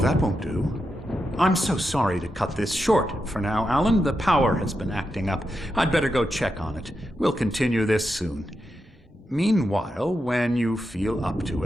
won't do. I'm so sorry to cut this short for now, Alan. The power has been acting up. I'd better go check on it. We'll continue this soon. Meanwhile, when you feel up to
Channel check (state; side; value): normal; both; correlation 0.87